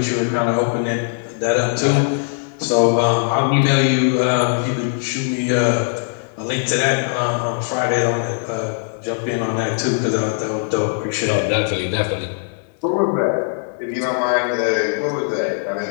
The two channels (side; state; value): right; silent; 66 dB below the other